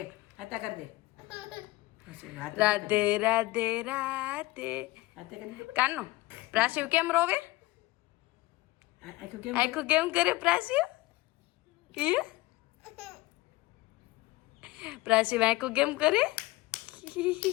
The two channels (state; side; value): quieter; right; 20.0 dB